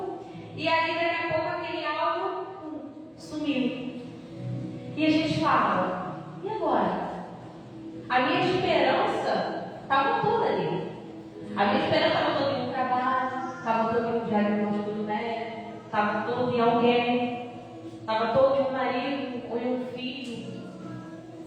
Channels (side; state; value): both; identical; correlation 1.00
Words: e aí daqui a pouco aquele algo sumiu. E a gente fala, e agora? A minha esperança estava toda ali. A minha esperança estava toda em um trabalho, estava toda em um diagnóstico do médico, estava toda em alguém, estava toda em um marido ou em um filho.